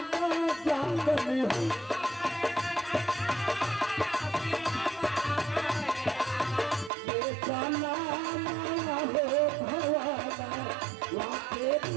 जागली हो जाना हो भवाना वहाँ पे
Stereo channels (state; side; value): drops out; left; at 6.9 s